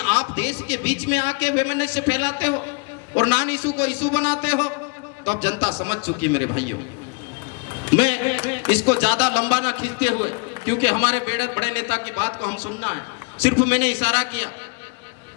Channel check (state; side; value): quieter; right; 32.1 dB